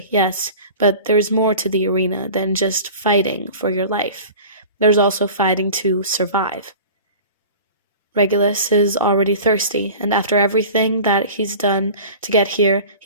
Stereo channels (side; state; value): both; inverted; correlation -0.39